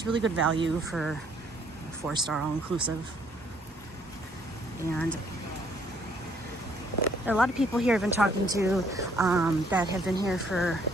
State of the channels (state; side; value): normal; both; correlation 0.65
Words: really good value for a 4-star all-inclusive. And there are a lot of people here I've been talking to that have been here for